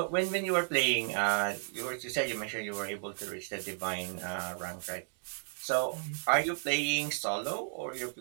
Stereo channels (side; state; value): left; silent; 55 dB below the other